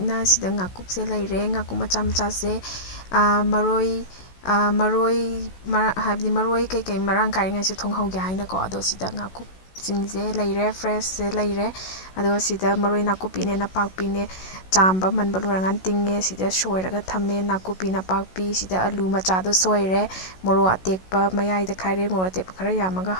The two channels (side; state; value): right; late; 16 ms